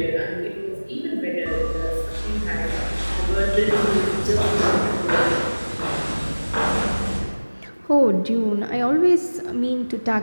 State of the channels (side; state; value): both; inverted; correlation -1.00